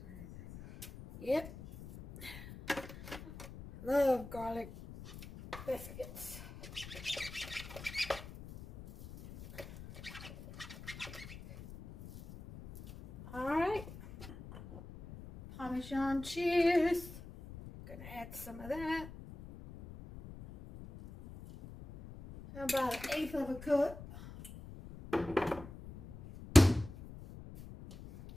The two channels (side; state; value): left; noise; rumble, 14 dB below the sound